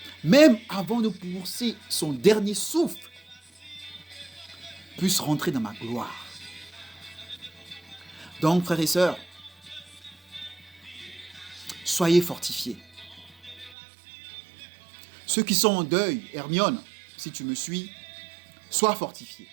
même avant de pousser son dernier souffle, puisse rentrer dans ma gloire. Donc, frères et sœurs, soyez fortifiés. Ceux qui sont en deuil, Hermione, si tu me suis, sois fortifié.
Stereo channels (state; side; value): drops out; left; at 13.8 s